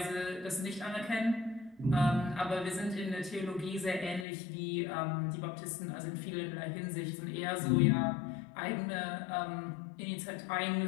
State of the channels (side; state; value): right; drops out; at 4.2 s